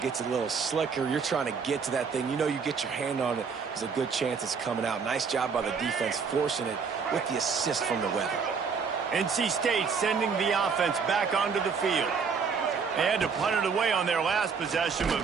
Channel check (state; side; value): quieter; left; 5.7 dB